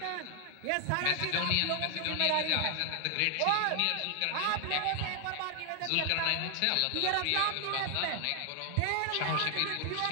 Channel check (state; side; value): different; both; correlation 0.00